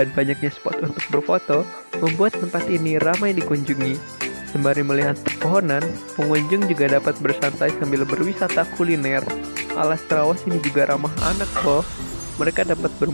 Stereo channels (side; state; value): both; inverted; correlation -1.00